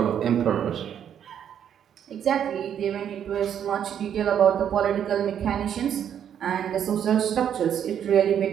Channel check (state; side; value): quieter; left; 9.1 dB